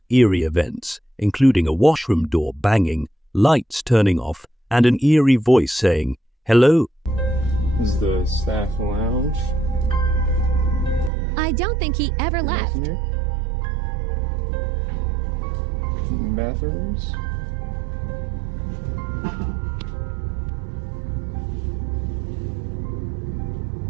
eerie events, including a washroom door banging, lights turning off, and an eerie voice saying, "Hello." This is the staff lounge. I don't think he ever left. Bathrooms.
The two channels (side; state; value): left; drops out; at 11.1 s